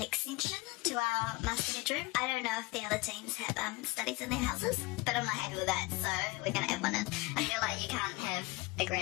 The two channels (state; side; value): quieter; right; 23.6 dB